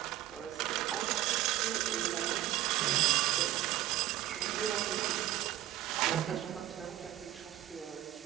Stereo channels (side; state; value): left; quieter; 14.0 dB